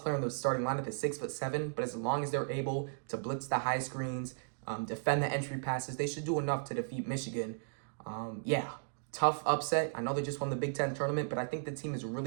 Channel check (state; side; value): silent; left; digital silence